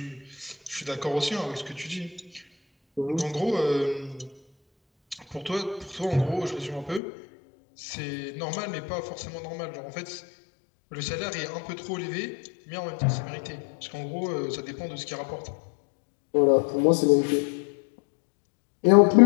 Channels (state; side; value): drops out; right; at 7.0 s